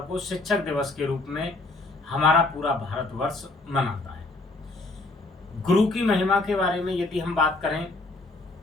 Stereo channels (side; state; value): right; quieter; 3.2 dB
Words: को शिक्षक दिवस के रूप में हमारा पूरा भारतवर्ष मनाता है। गुरु की महिमा के बारे में यदि हम बात करें